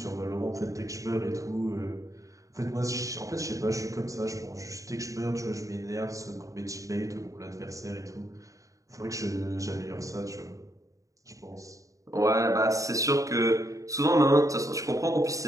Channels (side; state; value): left; late; 0.16 ms